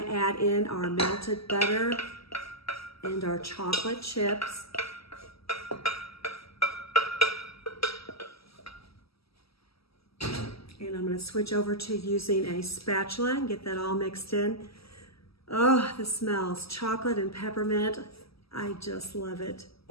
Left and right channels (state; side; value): late; right; 0.76 ms